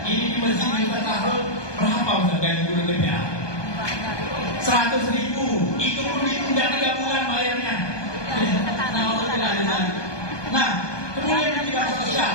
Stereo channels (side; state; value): right; late; 1.2 ms